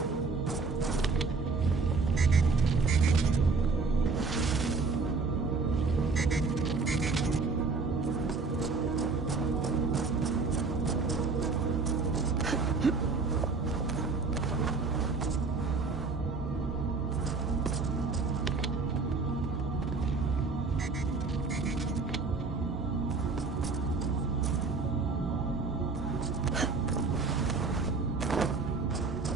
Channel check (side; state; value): left; quieter; 4.2 dB